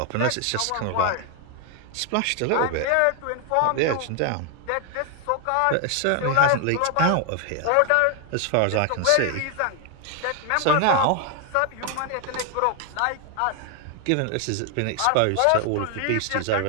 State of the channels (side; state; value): both; different; correlation 0.00